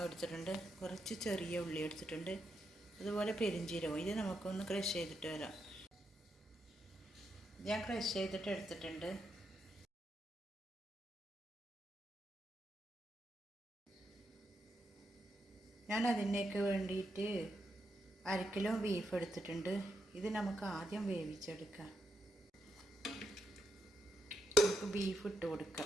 എടുത്തിട്ടുണ്ട്, കുറച്ച് ചെറിയ ഉള്ളി എടുത്തിട്ടുണ്ട്, അതുപോലെ പെരിഞ്ചീരകം. ഇത് നമുക്കൊന്ന് ക്രഷ് ചെയ്തിട്ട് വരാം. ഞാൻ ക്രഷ് ചെയ്തിട്ട് എടുത്തിട്ടുണ്ട്. ഞാൻ അതിനേക്ക് വേണ്ടിയിട്ട് 1/2 കിലോ ബീഫ് എടുത്തിട്ടുണ്ട്. ഇത് നമുക്ക് ആദ്യം വേവിച്ചെടുക്കാം. നമുക്ക് ബീഫ് ഇട്ട്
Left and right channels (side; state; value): both; normal; correlation 0.82